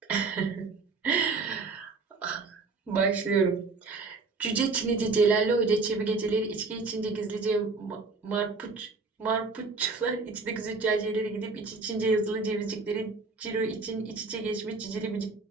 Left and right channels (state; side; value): quieter; left; 4.1 dB